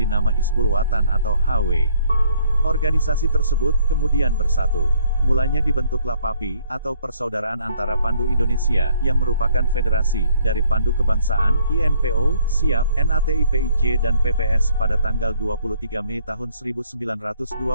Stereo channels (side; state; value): both; inverted; correlation -0.65